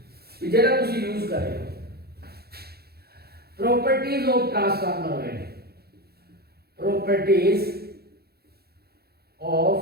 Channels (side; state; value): left; late; 0.46 ms